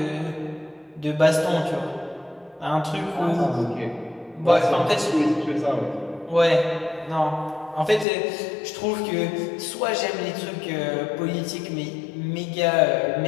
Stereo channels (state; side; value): drops out; right; at 8.1 s